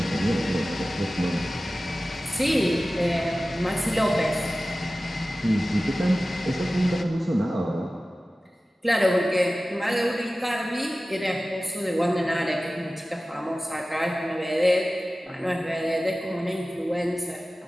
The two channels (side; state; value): both; normal; correlation 0.96